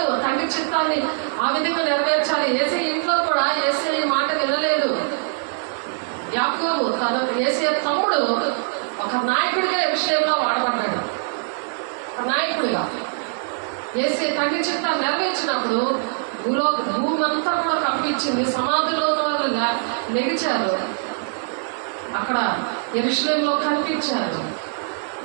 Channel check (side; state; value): left; silent; digital silence